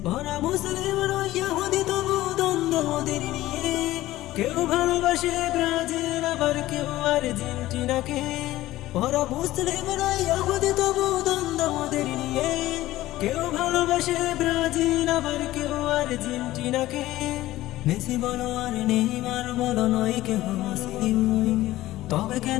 ওরা মুসলিম নয় ইহুদি তবু দ্বন্দ্ব ওদের নিয়ে, কেউ ভালোবাসে ব্রাজিল আবার কেউ আর্জেন্টিনাকে। ওরা মুসলিম নয় ইহুদি তবু দ্বন্দ্ব ওদের নিয়ে, কেউ ভালোবাসে ব্রাজিল আবার কেউ আর্জেন্টিনাকে। মেসি বলো আর নেইমার বলো নয় কেহ মুসলিম, তবে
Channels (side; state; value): right; quieter; 16.1 dB